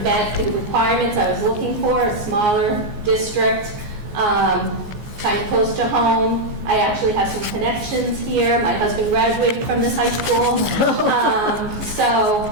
met the requirements I was looking for, a smaller district, kind of close to home. I actually have some connections here. My husband graduated from this high school.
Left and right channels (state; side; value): late; left; 14 ms